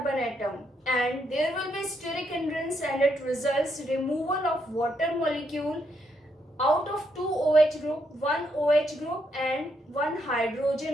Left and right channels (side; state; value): both; normal; correlation 0.77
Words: atom, and there will be steric hindrance, and it results removal of water molecule out of 2 OH group, 1 OH group and 1